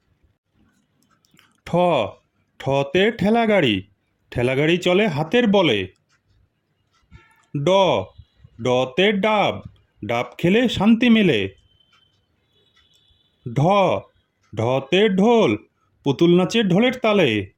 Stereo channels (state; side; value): identical; both; correlation 1.00